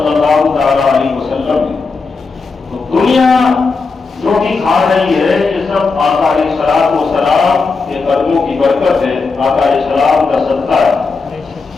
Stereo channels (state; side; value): quieter; right; 4.4 dB